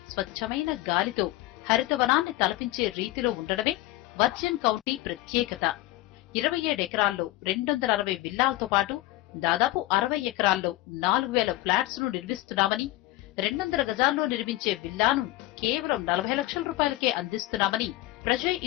స్వచ్ఛమైన గాలితో హరితవనాన్ని తలపించే రీతిలో ఉండడమే వర్జిన్ కౌంటీ ప్రత్యేకత. 27 ఎకరాల్లో 260 విల్లాలతో పాటు దాదాపు 60 ఎకరాల్లో 4,000 ఫ్లాట్స్ ను నిర్మిస్తున్నామని, 200 గజాల్లో నిర్మించే విల్లాను కేవలం 40 లక్షల రూపాయలకే అందిస్తున్నామని Prajay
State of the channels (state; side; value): quieter; right; 17.5 dB